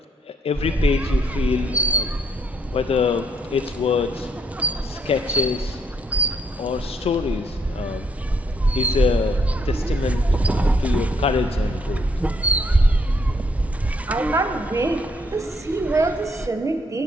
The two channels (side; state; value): both; normal; correlation 0.71